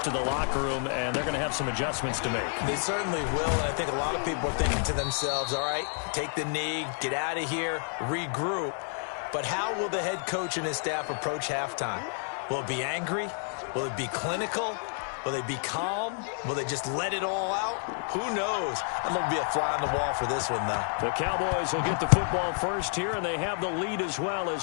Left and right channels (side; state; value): right; silent; 57 dB below the other